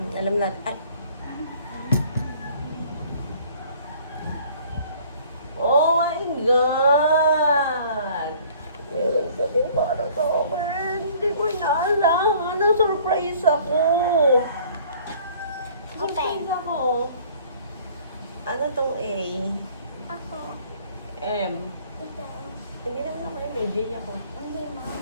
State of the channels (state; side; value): inverted; both; correlation -0.54